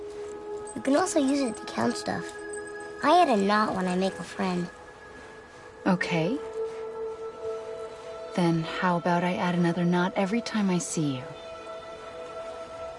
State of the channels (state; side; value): identical; both; correlation 1.00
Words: You can also use it to count stuff. I add a knot when I make a friend. Okay. Then how about I add another knot every time I see you?